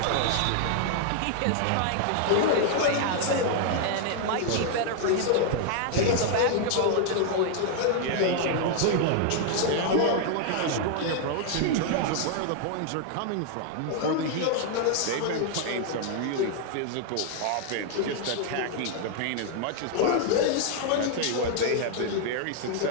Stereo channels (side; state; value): both; different; correlation 0.00